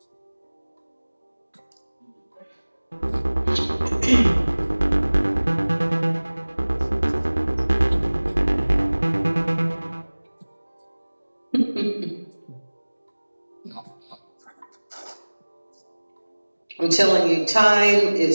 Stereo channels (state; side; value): inverted; both; correlation -1.00